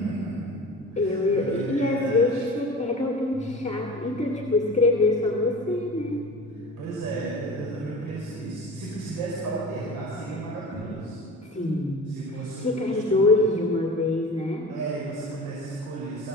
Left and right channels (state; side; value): normal; both; correlation 0.36